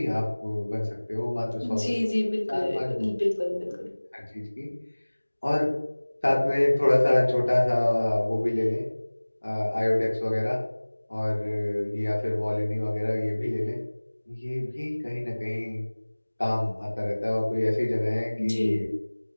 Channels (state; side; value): inverted; both; correlation -1.00